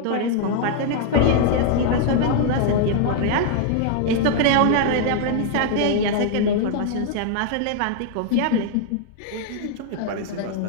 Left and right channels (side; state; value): both; different; correlation 0.00